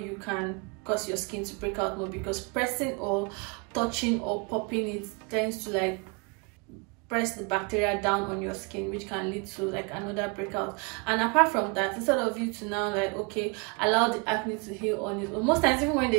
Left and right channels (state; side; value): quieter; left; 31.1 dB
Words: can cause your skin to break out more, because pressing or touching or popping it tends to like press the bacteria down on your skin, which can lead to like another breakout. And apart from that, instead of you to now like, okay, allow the acne to heal on it, or most times even when